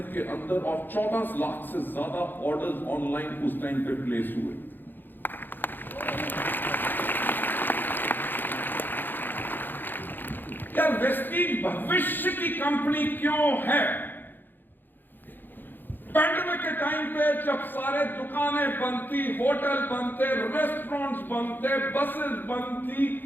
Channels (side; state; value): right; late; 0.092 ms